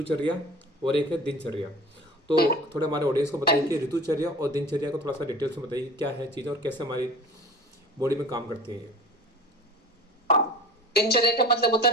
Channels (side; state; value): both; normal; correlation 0.39